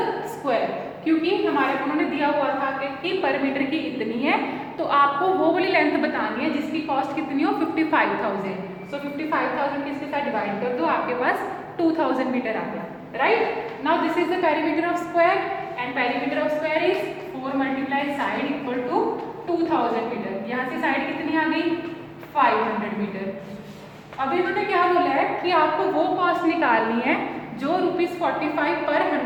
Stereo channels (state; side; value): identical; both; correlation 1.00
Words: स्क्वायर। क्योंकि हमारे उन्होंने दिया हुआ था कि पर मीटर की इतनी है, तो आपको वो वाली लेंथ बतानी है जिसकी कॉस्ट कितनी हो, 55,000। सो 55,000 किसके साथ डिवाइड कर दो, आपके पास 2000 मीटर आ गया, right. Now this is the perimeter of square and perimeter of square is 4 multiply side equal to 2000 metre. यहाँ से साइड कितनी आ गई, 500 मीटर। अभी इन्होंने क्या बोला है कि आपको वो कॉस्ट निकालनी है जो ₹45 पर